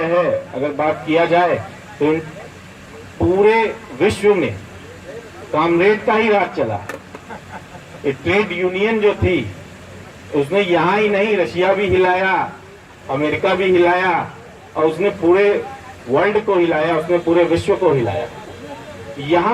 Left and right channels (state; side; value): identical; both; correlation 1.00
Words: है। अगर बात किया जाए तो पूरे विश्व में कामरेड का ही राज चला। ये ट्रेड यूनियन जो थी उसने यहाँ ही नहीं, रशिया भी हिलाया, अमेरिका भी हिलाया, और उसने पूरे वर्ल्ड को हिलाया, उसने पूरे विश्व को हिलाया।